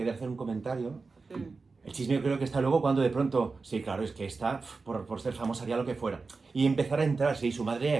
hacer un comentario. El chisme yo creo que está luego cuando de pronto, sí, claro, es que está, por ser famosa haría lo que fuera. Y empezar a entrar, sí, su madre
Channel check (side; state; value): left; quieter; 4.2 dB